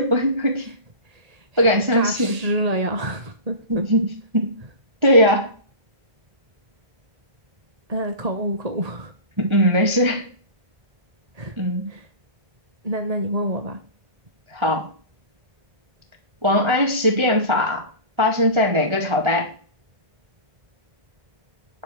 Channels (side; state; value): left; late; 1.3 ms